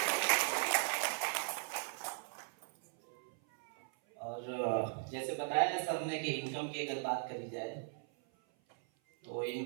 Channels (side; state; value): left; silent; 52 dB below the other